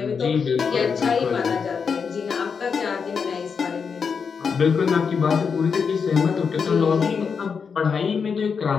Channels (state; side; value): quieter; right; 6.0 dB